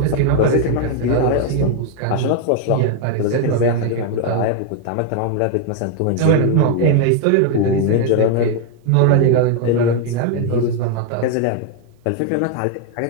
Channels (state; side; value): different; both; correlation 0.01